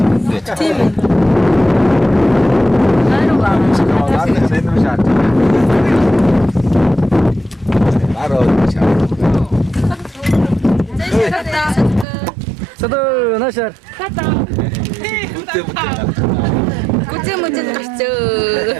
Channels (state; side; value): drops out; left; at 12.1 s